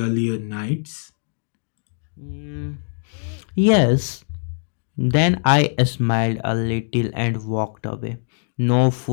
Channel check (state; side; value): silent; right; digital silence